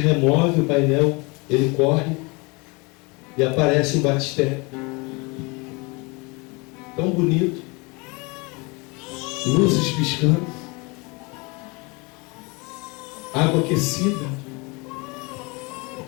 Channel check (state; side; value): quieter; right; 28.1 dB